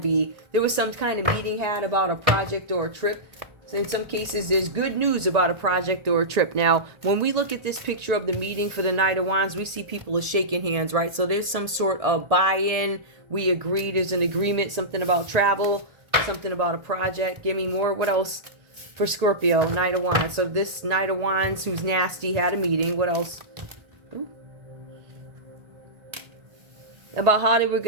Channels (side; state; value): left; late; 1.8 ms